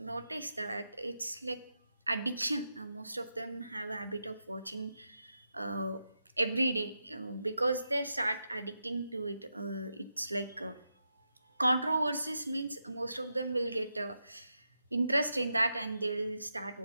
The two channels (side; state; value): both; inverted; correlation -0.86